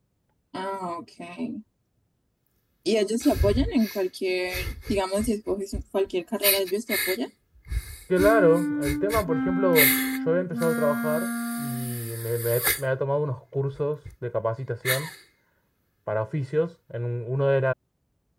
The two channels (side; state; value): both; identical; correlation 1.00